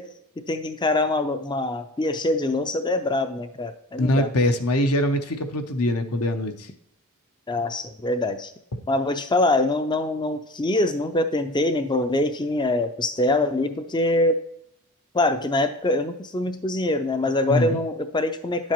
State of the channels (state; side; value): normal; both; correlation 0.39